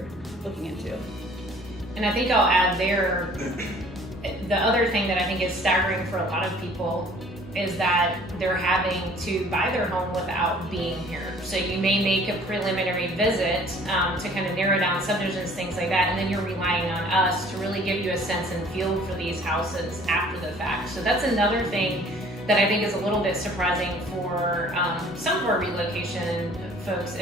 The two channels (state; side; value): normal; both; correlation 0.53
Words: looking into. And I think I'll add there, the other thing that I think is staggering for a lot of people is that they're having to buy their home without being here. So you may make a preliminary visit to kind of narrow down subdivisions, things like that, and then you're relying on us to really give you a sense and feel for these houses after the fact. So that's another thing that I think is a little bit surprising for some of our relocation folks